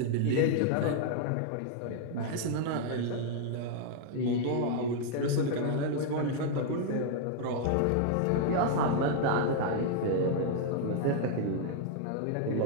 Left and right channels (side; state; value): both; different; correlation 0.00